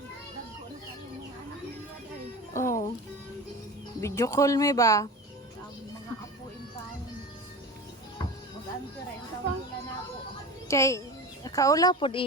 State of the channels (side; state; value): both; normal; correlation 0.32